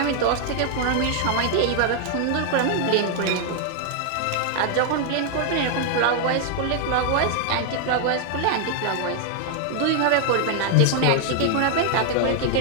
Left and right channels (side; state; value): both; different; correlation 0.00